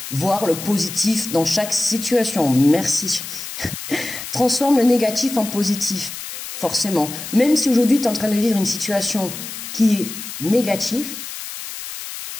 voir le positif dans chaque situation. Merci. Transforme le négatif en positif, forcément. Même si aujourd'hui, tu es en train de vivre une situation qui est négative.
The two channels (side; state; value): left; noise; hiss, 9 dB below the sound